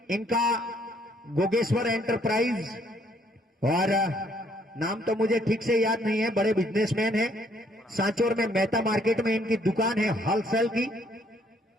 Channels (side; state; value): both; normal; correlation 0.66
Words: इनका गोगेश्वर एंटरप्राइज और नाम तो मुझे ठीक से याद नहीं है, बड़े बिजनेसमैन हैं। सांचौर में मेहता मार्केट में इनकी दुकान है होलसेल की।